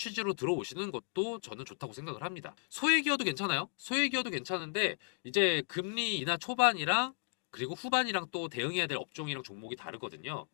들어오시는 것도 저는 좋다고 생각을 합니다. 소액이어도 괜찮아요. 소액이어도 괜찮은데 이제 금리 인하 초반이랑 그리고 후반이랑 또 대응해야 될 업종이랑 종목이 다르거든요.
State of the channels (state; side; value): silent; right; 55 dB below the other